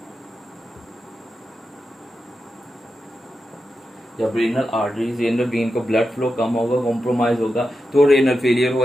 जब रेनल आर्टरीज, रेनल वेन को ब्लड फ्लो कम होगा, कॉम्प्रोमाइज होगा, तो रेनल फेलियर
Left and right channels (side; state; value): both; normal; correlation 0.89